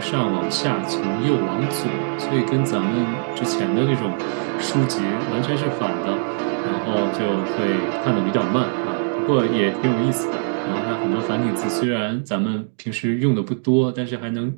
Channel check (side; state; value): left; silent; digital silence